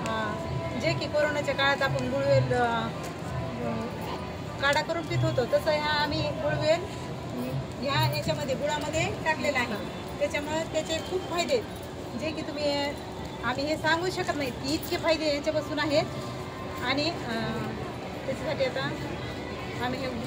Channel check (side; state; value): both; identical; correlation 1.00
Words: जे की कोरोनाच्या काळात आपण गुळवेल काढा करून पित होतो तसं ह्या आम्ही गुळवेल ह्या याच्यामध्ये गुळामध्ये टाकलेला आहे. त्याच्यामुळं त्याचे खूप फायदे जे की तुम्ही आम्ही हे सांगू शकत नाही की इतके फायदे याच्यापासून आहेत. आणि त्याच्यासाठी आता आम्ही हे